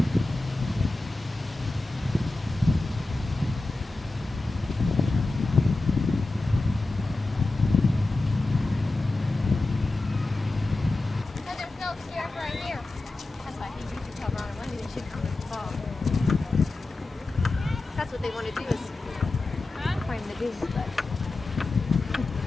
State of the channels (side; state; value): right; quieter; 3.1 dB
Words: That's what they want to do is climb the dunes, but